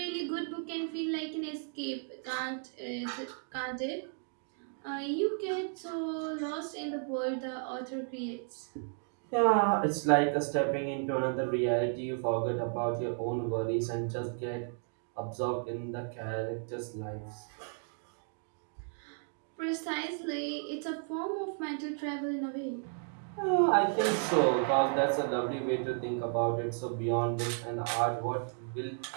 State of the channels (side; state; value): left; silent; 55 dB below the other